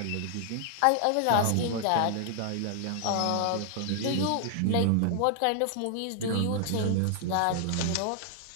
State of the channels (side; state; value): both; different; correlation 0.00